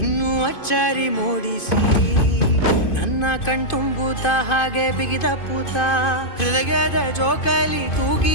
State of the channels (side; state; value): right; late; 2.5 ms